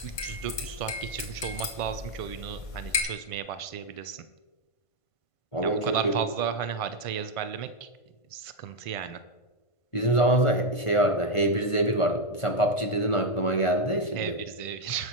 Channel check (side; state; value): right; late; 1.5 ms